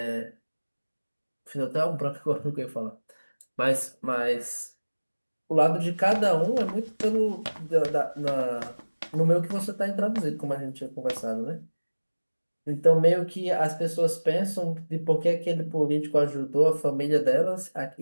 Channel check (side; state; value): both; inverted; correlation -1.00